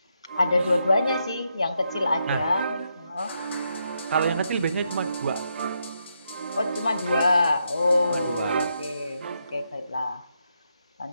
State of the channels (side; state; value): both; inverted; correlation -0.80